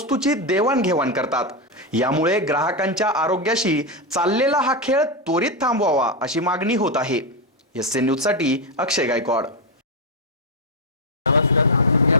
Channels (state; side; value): normal; both; correlation 0.05